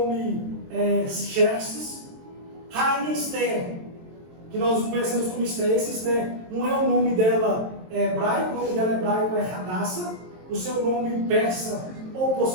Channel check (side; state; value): left; late; 23 ms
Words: Xerxes. Rainha Esther, que nós conhecemos como Esther. Esse Esther não é o nome dela hebraico, o nome dela hebraico é Hadassah, o seu nome persa, ou